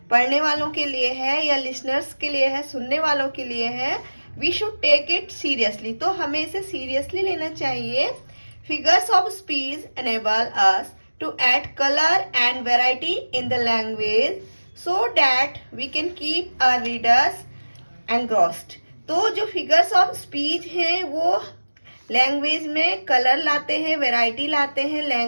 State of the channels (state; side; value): inverted; both; correlation -1.00